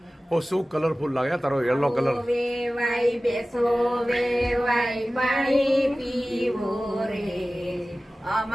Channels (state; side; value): normal; both; correlation 0.97